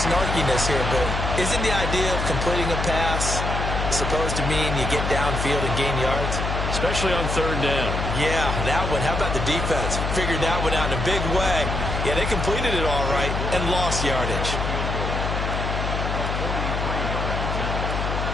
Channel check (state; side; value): noise; left; hum, 2 dB below the sound